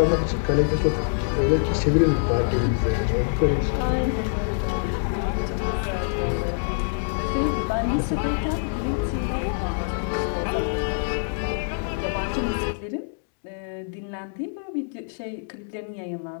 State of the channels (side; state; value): right; silent; digital silence